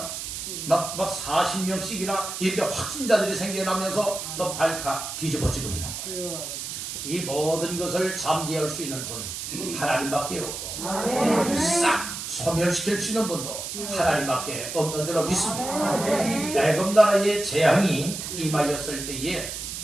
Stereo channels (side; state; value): right; noise; hiss, 6 dB below the sound